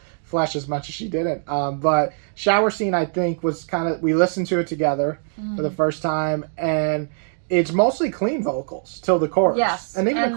Flesh as much as she didn't. But Shower Scene, I think, was kind of, we listened to it together for the first time, and it's mostly clean vocals till the chorus. Yes. And even the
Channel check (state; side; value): silent; left; digital silence